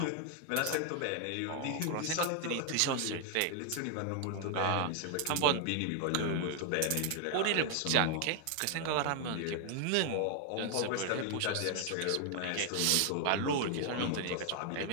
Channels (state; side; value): different; both; correlation 0.00